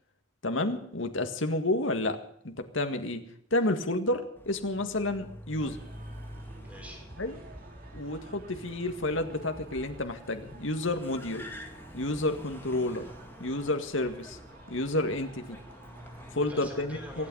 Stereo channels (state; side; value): normal; both; correlation 0.09